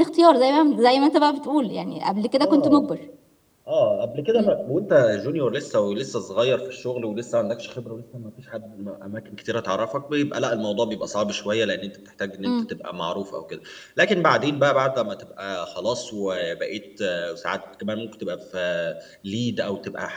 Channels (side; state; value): both; identical; correlation 1.00